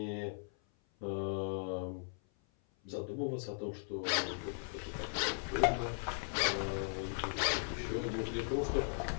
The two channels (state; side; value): silent; right; 53 dB below the other